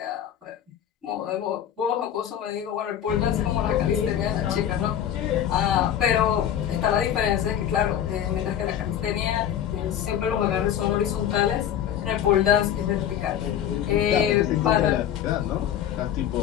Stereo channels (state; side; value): quieter; right; 10.1 dB